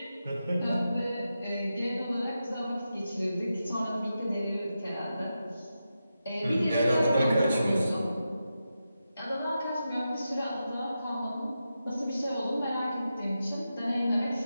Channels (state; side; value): inverted; both; correlation -0.89